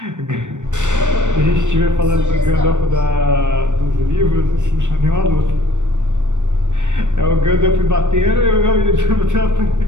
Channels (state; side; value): late; left; 0.85 ms